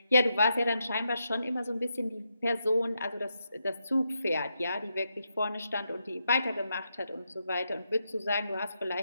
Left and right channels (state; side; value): inverted; both; correlation -0.83